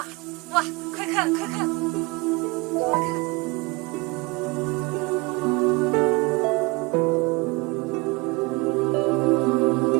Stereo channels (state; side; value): quieter; left; 25.8 dB